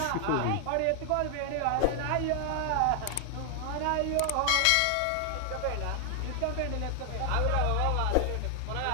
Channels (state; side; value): different; both; correlation 0.00